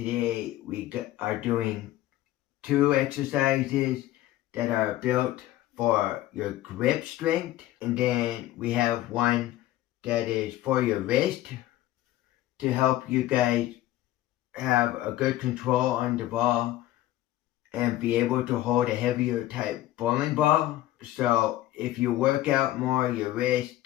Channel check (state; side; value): quieter; right; 14.9 dB